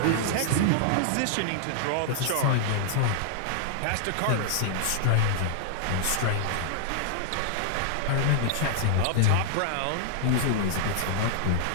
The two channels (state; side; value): different; both; correlation -0.01